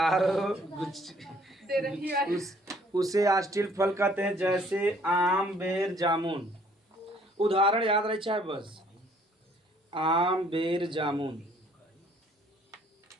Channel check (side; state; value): both; normal; correlation 0.61